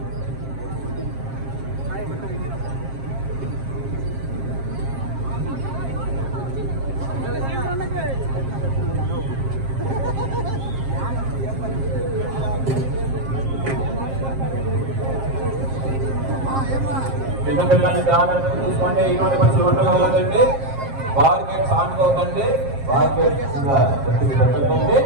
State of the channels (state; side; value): late; left; 7.5 ms